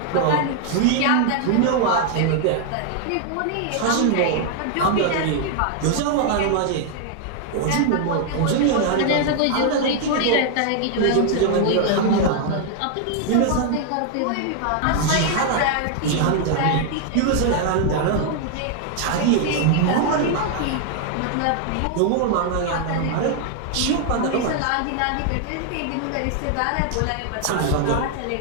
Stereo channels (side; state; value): both; different; correlation 0.00